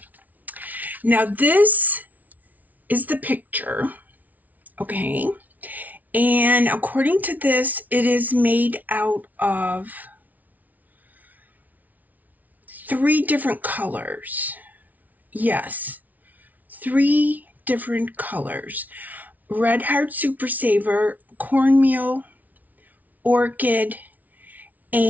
Now this is the picture, okay? And according to this, it is made out of 3 different colors. Yes, 3 different colors. Red Heart Super Saver, Cornmeal, Orchid,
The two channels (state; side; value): late; left; 0.076 ms